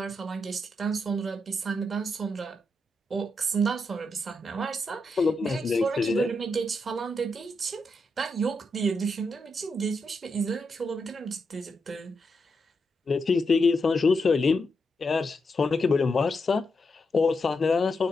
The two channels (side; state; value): both; normal; correlation 0.84